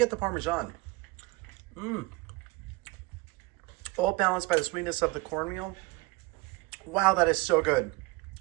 the Parmesan. All balanced by the sweetness of the cornmeal. Wow, that is so good.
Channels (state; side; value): quieter; left; 23.3 dB